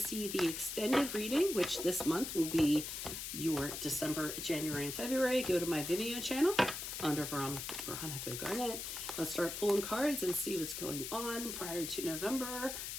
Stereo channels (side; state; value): left; noise; hiss, 6 dB below the sound